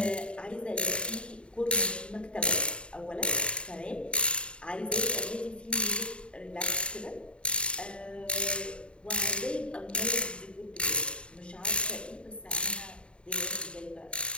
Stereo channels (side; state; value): right; late; 0.056 ms